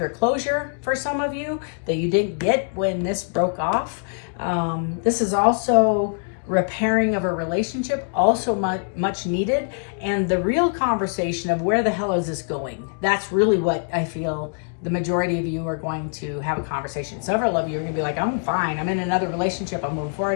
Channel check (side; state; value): right; silent; 63 dB below the other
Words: closure for some of you that you didn't get when this broke off. This is also repairing of a relationship, also much needed. And the real conversation of where the hell is this going? That's really what I feel the majority of you are going to have a conversation. Several of you are going to be like, I'm fine. I'm in another relationship. I'm moving